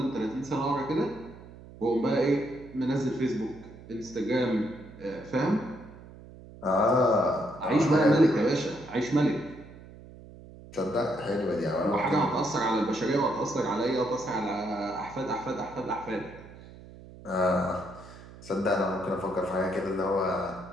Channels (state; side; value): noise; right; hum, 18 dB below the sound